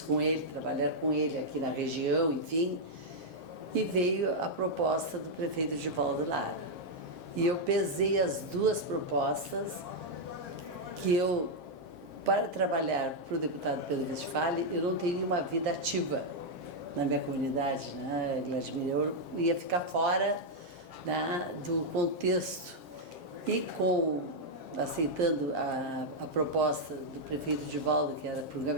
com ele, trabalhar com ele aqui na região, enfim. E veio a proposta do prefeito Edivaldo Lara. E eu pesei as duas propostas, que para trabalhar para o deputado Pedro Westphalen, eu não teria uma vida ativa na minha comunidade, né, Vladimir? Eu ia ficar fora do contexto. E aceitando a proposta do prefeito Edivaldo, que era para o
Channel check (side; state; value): left; late; 7.5 ms